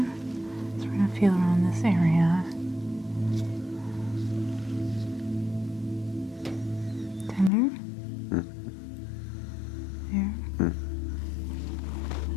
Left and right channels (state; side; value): drops out; right; at 7.5 s